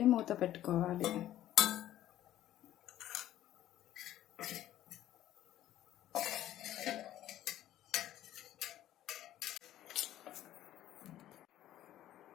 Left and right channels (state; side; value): quieter; right; 13.0 dB